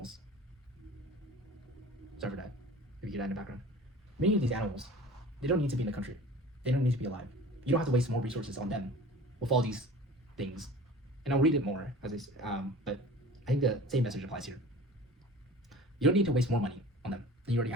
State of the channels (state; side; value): normal; both; correlation 0.41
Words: sorry for that, if you hear that in the background. Many of these animals, they don't need to be in the country. They don't need to be alive. You don't have to waste more resources on them with all these things. And I'll read it more, but I think the same message applies here. You don't need to waste more money on them than you already